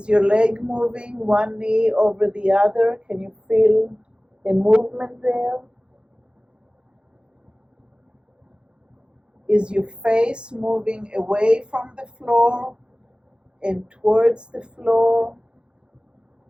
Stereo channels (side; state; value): left; late; 0.053 ms